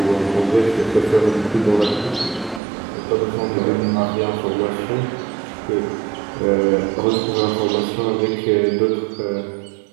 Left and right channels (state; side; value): drops out; left; at 2.6 s